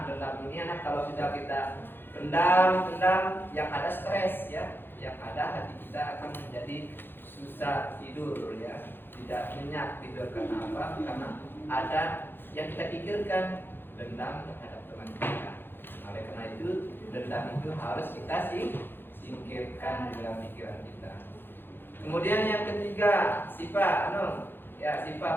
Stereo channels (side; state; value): right; late; 0.10 ms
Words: dendam ini anak kalau sudah kita pendam yang ada stres ya, yang ada hati kita akan menjadi susah tidur ya, tidak nyenyak tidur. Karena apa? Karena ada yang kita pikirkan, dendam terhadap teman kita. Oleh karena itu dendam itu harus kita singkirkan di dalam pikiran kita. Kemudian yang ketiga, sifat sifat